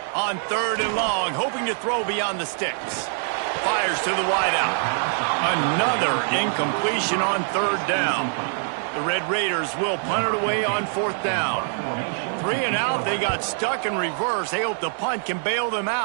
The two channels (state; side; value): silent; left; 63 dB below the other